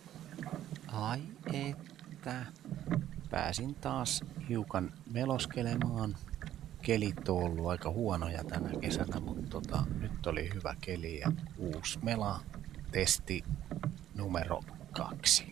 Ai että. Pääsin taas hiukan meloskelemaan. Kelit on ollut aika huonoja tänä kesänä, mutta nyt oli hyvä keli ja uusi mela. Testi numero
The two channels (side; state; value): left; quieter; 12.1 dB